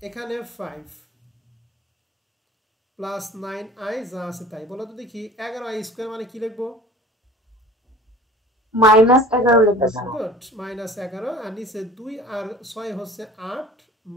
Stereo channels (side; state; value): both; normal; correlation 0.43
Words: এখানে 5 +9i যা আছে তাই, বলো তো দেখি 11i স্কোয়ার মানে কি লিখবো? -11 লিখবে স্যার গুড, -11, আর নিচে 2 আর 6 হচ্ছে 8